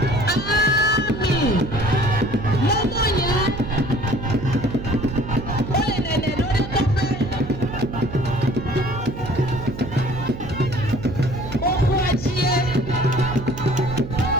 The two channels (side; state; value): right; noise; hum, 10 dB below the sound